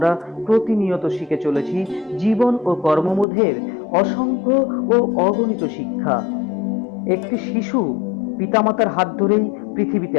প্রতিনিয়ত শিখে চলেছি জীবন ও কর্মবোধের অসংখ্য ও অগণিত শিক্ষা। একটি শিশু পিতামাতার হাত ধরেই পৃথিবীতে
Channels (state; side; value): drops out; right; at 3.2 s